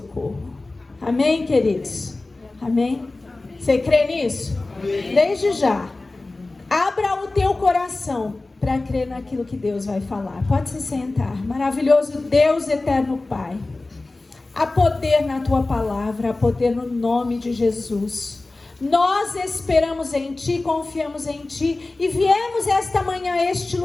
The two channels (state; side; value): quieter; right; 3.1 dB